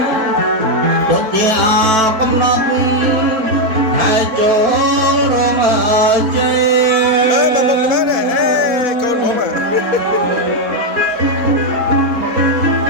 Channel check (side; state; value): left; late; 4.5 ms